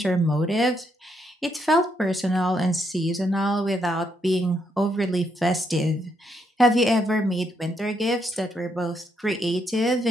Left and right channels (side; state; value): both; normal; correlation 0.77